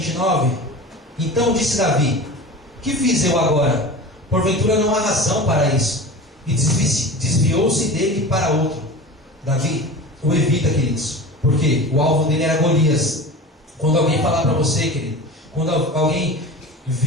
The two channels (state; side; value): normal; both; correlation 0.34